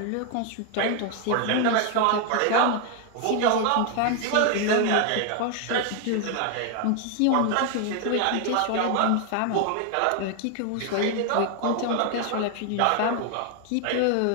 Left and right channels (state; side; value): different; both; correlation 0.01